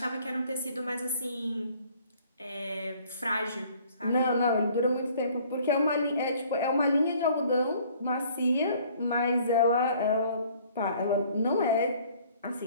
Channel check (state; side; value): inverted; both; correlation -0.57